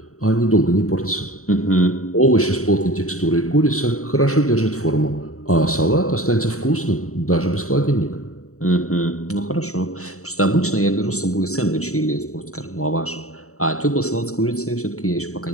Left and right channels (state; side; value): late; right; 0.64 ms